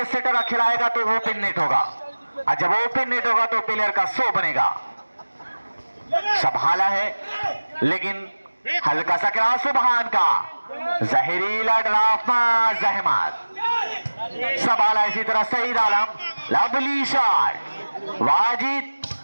सेटर खिलाएगा तो वो ओपन नेट होगा, और जब ओपन नेट होगा तो प्लेयर का 100 बनेगा। संभाला है लेकिन हल्का सा क्रॉस सुबहान का, जहरीला ड्राफ्ट जहमत, संभाला इसी तरह सईद आलम, लवली शॉट, वाजिद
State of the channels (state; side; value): inverted; both; correlation -1.00